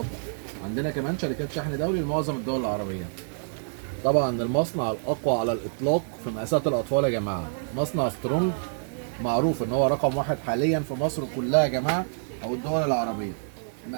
عندنا كمان شركات شحن دولي لمعظم الدول العربيه. طبعا المصنع الاقوى على الاطلاق في مقاسات الاطفال يا جماعه، مصنع سترونج، معروف ان هو رقم واحد حاليا في مصر كلها يا جماعه او الدول العربيه.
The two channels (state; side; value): silent; left; digital silence